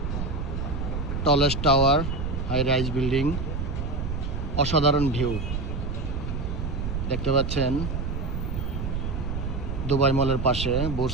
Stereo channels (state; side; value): noise; right; rumble, 3 dB below the sound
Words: tallest tower, high rise building, অসাধারণ ভিউ দেখতে পাচ্ছেন। দুবাই মলের পাশে, বুর্জ